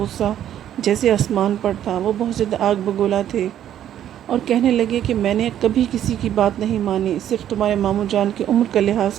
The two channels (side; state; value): left; quieter; 10.9 dB